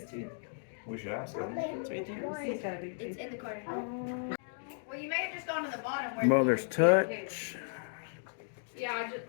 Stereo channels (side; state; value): right; silent; digital silence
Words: tooth. We should ask them. It's right there. He's got a big It's tooth. in the corner. Well, you may have just gone to the bottom where. Mother's touch. Yeah, I just